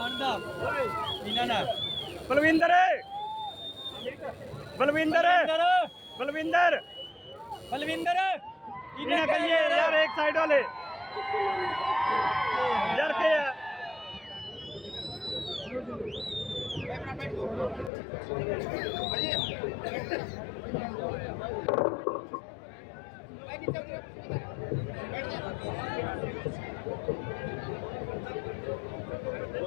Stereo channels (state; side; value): drops out; right; at 17.9 s